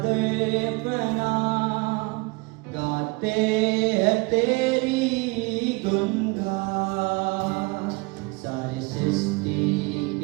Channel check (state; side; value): quieter; left; 27.0 dB